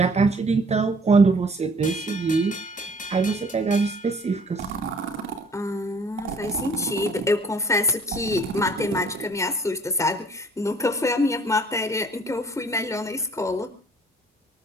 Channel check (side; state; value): both; normal; correlation 0.56